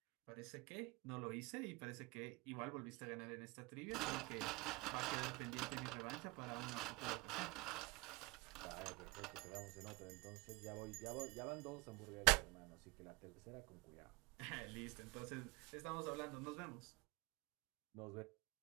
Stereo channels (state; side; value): quieter; left; 24.8 dB